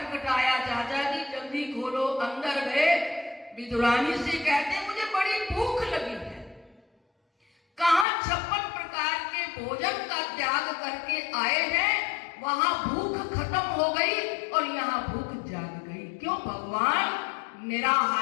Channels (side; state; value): right; drops out; at 8.1 s